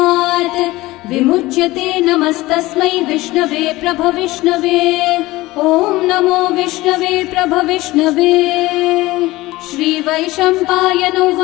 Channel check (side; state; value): right; quieter; 19.0 dB